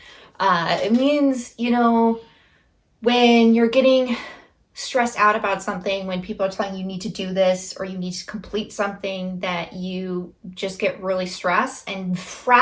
it means, when you're getting stressed out about something, when people are telling you need to do this or you need to complete something, that you just get really stressed and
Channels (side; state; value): both; identical; correlation 1.00